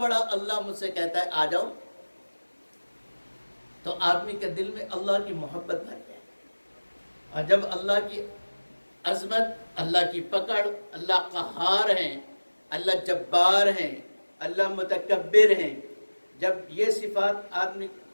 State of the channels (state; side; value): inverted; both; correlation -1.00